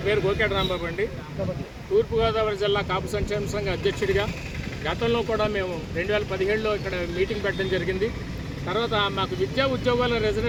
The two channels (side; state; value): both; identical; correlation 1.00